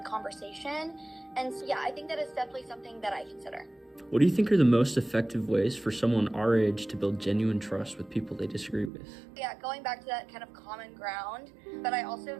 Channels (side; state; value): left; drops out; at 8.9 s